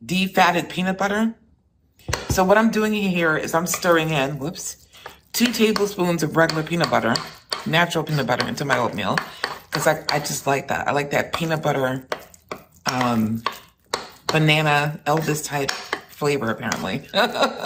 defatted peanut butter. So what I'm doing here is I'm stirring in, 2 tablespoons of regular peanut butter, natural peanut butter into my oatmeal because I just like that. I like that peanut butter, banana Elvis type flavor apparently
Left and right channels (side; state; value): both; identical; correlation 1.00